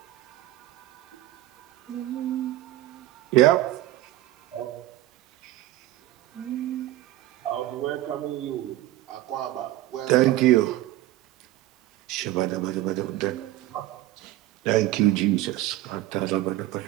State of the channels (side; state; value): left; quieter; 15.4 dB